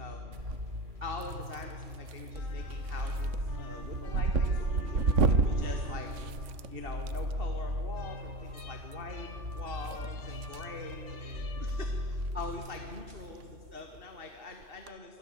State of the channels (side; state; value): left; late; 3.5 ms